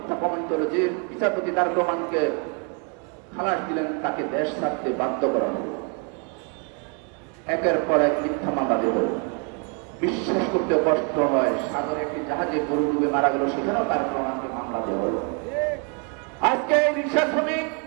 প্রমাণিত হলো। যে বিচারপতি তারেক রহমানকে খালাস দিলেন, তাকে দেশ ছাড়তে বাধ্য করা হলো। একের পর এক মিথ্যা মামলা দেব, বিশ্বাস করতে কষ্ট হয়। সাগরে একটি জাহাজে গরু ডুবে মারা গেল, সেখানেও তারেক রহমানকে মামলা দেওয়া হলো। আজকে এই রিক্সা শ্রমিক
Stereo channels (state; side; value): quieter; left; 37.5 dB